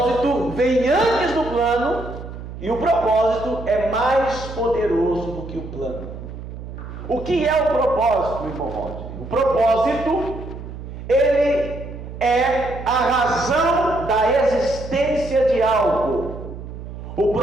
vem antes do plano e o propósito é mais poderoso do que o plano. O que é o propósito, irmão Rodney? O propósito, ele é a razão da existência de algo. O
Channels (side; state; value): right; noise; hum, 11 dB below the sound